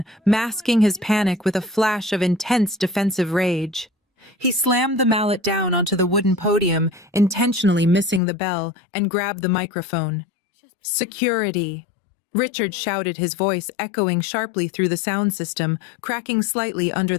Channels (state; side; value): drops out; right; at 8.2 s